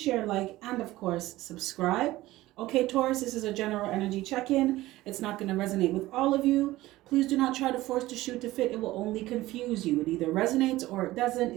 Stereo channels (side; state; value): left; quieter; 17.2 dB